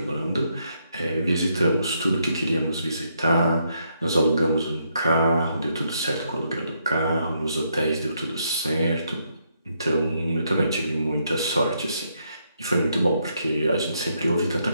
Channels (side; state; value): both; inverted; correlation -0.76